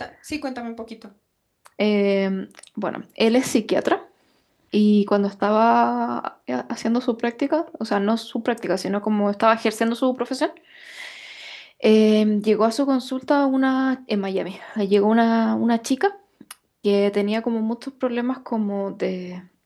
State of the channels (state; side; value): identical; both; correlation 1.00